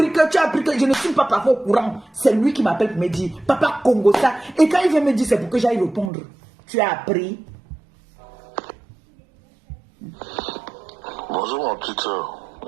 que je ne suis pas parfois au courant. C'est lui qui m'appelle pour me dire, papa Congo ça. Et quand il vient me dire, c'est pour que j'aille répondre. Tu as appris. Bonjour ma petite soeur.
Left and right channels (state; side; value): drops out; left; at 6.1 s